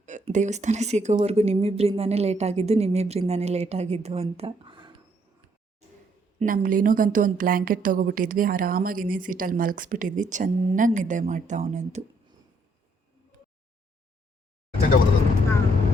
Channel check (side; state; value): both; normal; correlation 0.70